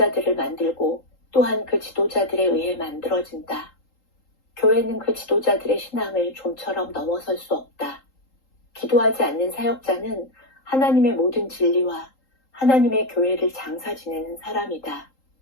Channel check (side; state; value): right; late; 3.8 ms